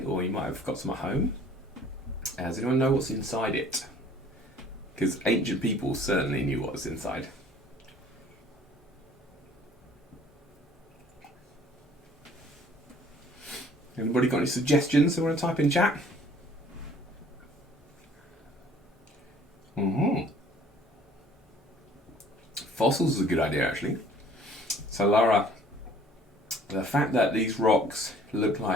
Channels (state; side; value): normal; both; correlation 0.54